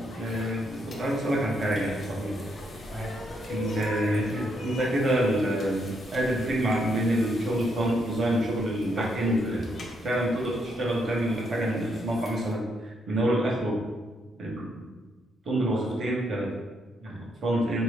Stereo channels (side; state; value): both; normal; correlation 0.76